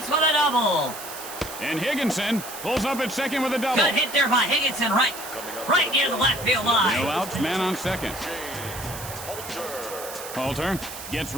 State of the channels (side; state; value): right; noise; hiss, 11 dB below the sound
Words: with a double. And Higginson pulls up at second with a double. Good hit there by Higginson, right near the left field line. No outs, man on second. Halter gets